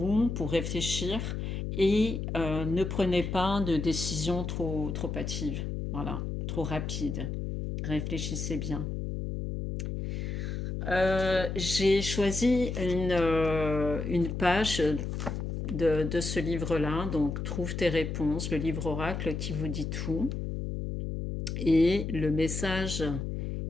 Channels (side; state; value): left; noise; hum, 4 dB below the sound